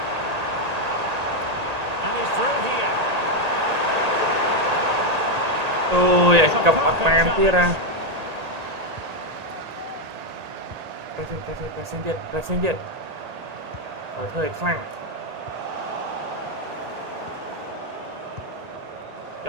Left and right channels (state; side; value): late; left; 1.8 ms